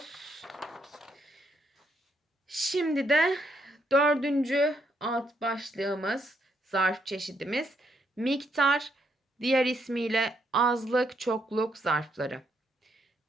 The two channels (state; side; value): normal; both; correlation 0.75